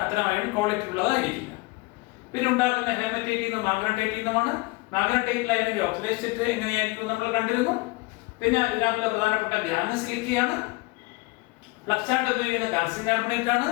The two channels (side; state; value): right; quieter; 23.9 dB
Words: അത്തരം അയൺ ക്വാളിറ്റി ഉള്ളതായിരിക്കില്ല. പിന്നെ ഉണ്ടാക്കുന്ന ഹെമറ്റൈറ്റിൽ നിന്നും മാഗ്നറ്റൈറ്റിൽ നിന്നുമാണ്. മാഗ്നറ്റൈറ്റിൽ അതിന്റെ ഓക്സിഡൈസ് എങ്ങനെയായിരിക്കും നമ്മൾ കണ്ടിരുന്നു. പിന്നെ ഇതിനകത്തുള്ള പ്രധാനപ്പെട്ട ഗ്യാങ് സിലിക്കയാണ്. ഫ്ലക്സായിട്ട് ഉപയോഗിക്കുന്ന കാൽസ്യം കാർബണേറ്റ് ആണ്.